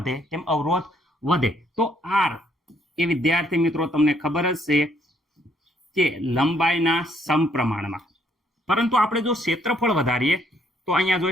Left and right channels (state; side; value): normal; both; correlation 0.68